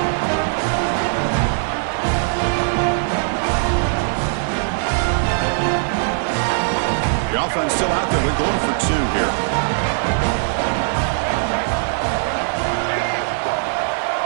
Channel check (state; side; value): silent; left; 66 dB below the other